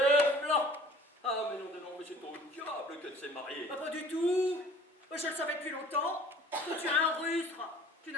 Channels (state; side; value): normal; both; correlation 0.49